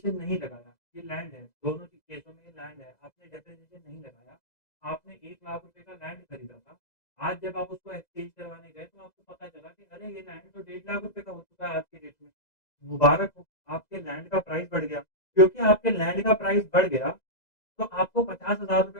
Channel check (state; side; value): late; right; 2.0 ms